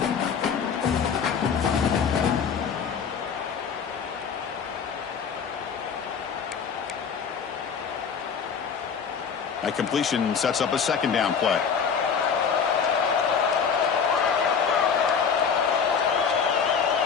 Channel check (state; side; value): quieter; right; 6.5 dB